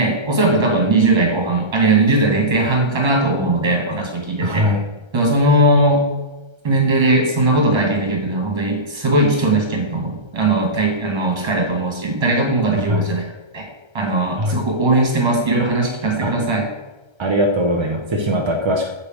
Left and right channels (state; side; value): late; left; 1.3 ms